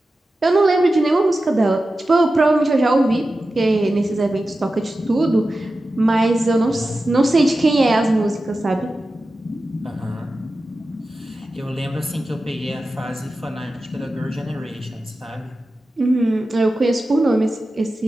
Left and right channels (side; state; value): both; normal; correlation 0.93